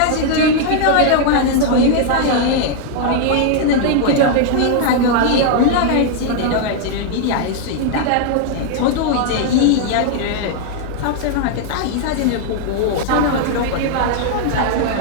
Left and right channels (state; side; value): different; both; correlation 0.00